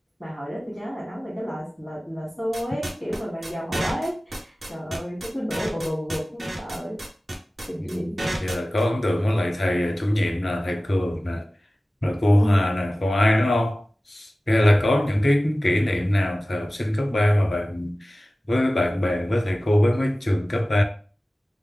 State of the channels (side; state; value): both; normal; correlation 0.97